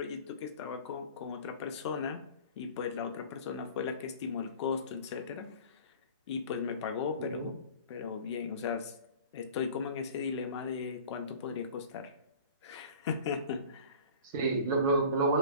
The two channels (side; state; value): both; inverted; correlation -0.42